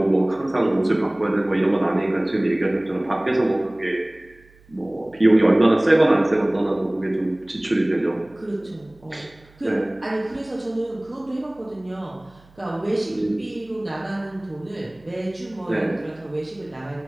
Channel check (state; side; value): noise; right; hum, 28 dB below the sound